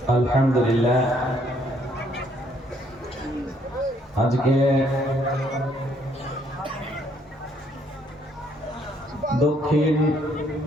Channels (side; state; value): both; normal; correlation 0.67